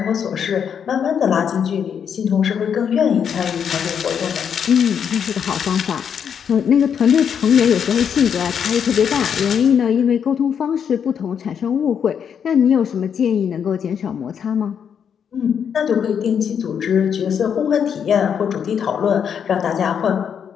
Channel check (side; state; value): right; quieter; 7.7 dB